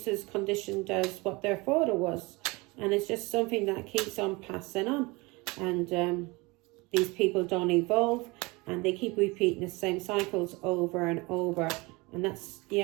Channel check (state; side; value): quieter; left; 24.8 dB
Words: as conditioned as what their father was, and it's just something that keeps on passing on, and these people don't evolve, and they keep repeating the same cycles over and over, and that's